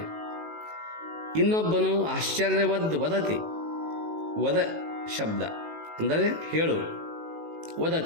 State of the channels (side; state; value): left; late; 19 ms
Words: ಇನ್ನೊಬ್ಬನು ಆಶ್ಚರ್ಯವದ್ ವದತಿ, ವದ ಶಬ್ದ ಅಂದರೆ ಹೇಳು,